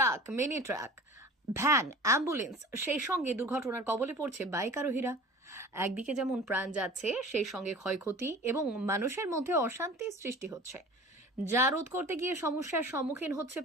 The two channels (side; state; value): both; normal; correlation 0.40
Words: mini truck, van, ambulance, সেই সঙ্গে দুর্ঘটনার কবলে পড়ছে বাইক আরোহীরা। একদিকে যেমন প্রাণ যাচ্ছে, সেই সঙ্গে ক্ষয়ক্ষতি এবং মানুষের মধ্যে অশান্তির সৃষ্টি হচ্ছে, যা রোধ করতে গিয়ে সমস্যার সম্মুখীন হচ্ছে